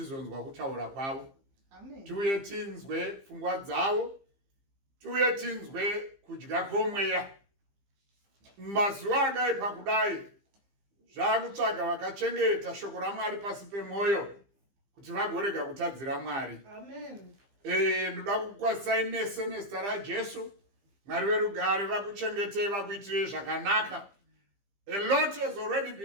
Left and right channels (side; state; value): left; late; 15 ms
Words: kutaura kwavo. Amen. Tiuye tinzwe pfungwa dzavo, tiuye tinzwe kudya kwomweya. Mazuva akaipa kudai zvakutsvaga vakachengeta shoko raMwari pasi pemwoyo kuti vagorega kutadzira Mwari. Amen. Ndoda kukwasai nese nezita raJesu. Mwari verugare vakuchengetei vakuitirei zvakanaka. A lot has already